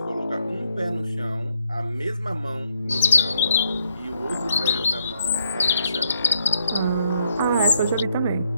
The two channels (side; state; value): both; inverted; correlation -0.76